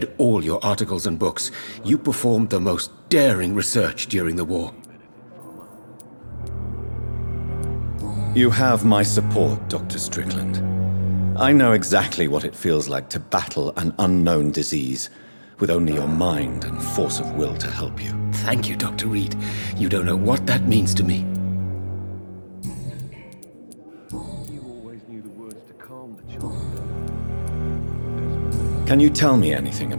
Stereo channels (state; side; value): inverted; both; correlation -1.00